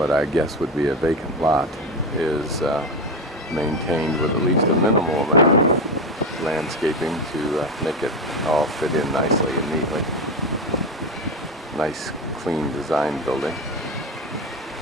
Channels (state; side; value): normal; both; correlation 0.17